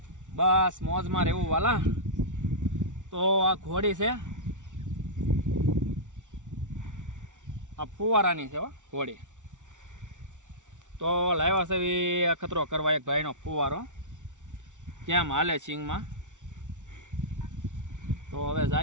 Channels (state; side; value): late; left; 0.86 ms